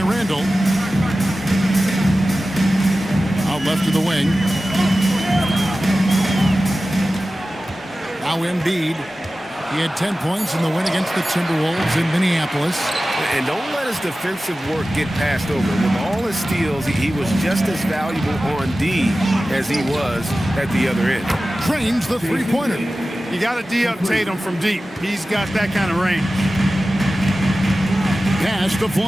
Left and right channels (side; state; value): both; normal; correlation 0.95